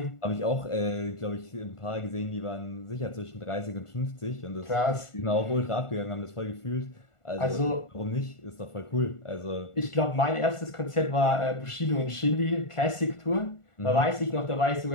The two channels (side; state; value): right; late; 1.4 ms